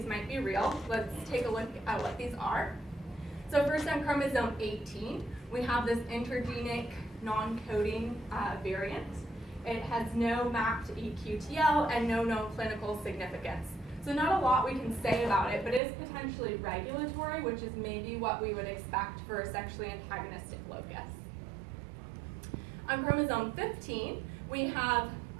might be real. Let's take a look at what these are. So first on chromosome 18, we have this intergenic non-coding variant. It has no mapped EQTL and no known clinical significance. So not a lot we can say about it, but it is potentially regulatory, which is maybe what we would expect for a sexually antagonistic locus. On chromosome 15, we have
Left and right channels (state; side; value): drops out; left; at 15.8 s